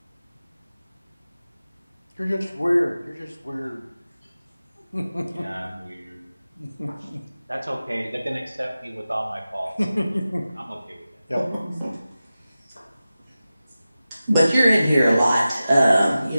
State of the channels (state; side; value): inverted; both; correlation -0.95